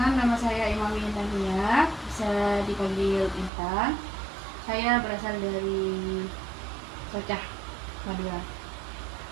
nama saya Imam Intan Nia, bisa dipanggil Intan. Saya berasal dari Socah, Madura.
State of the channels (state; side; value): drops out; left; at 3.5 s